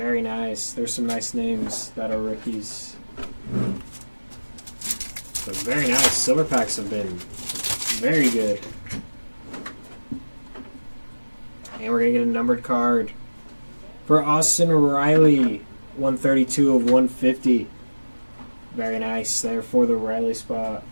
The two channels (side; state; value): both; inverted; correlation -1.00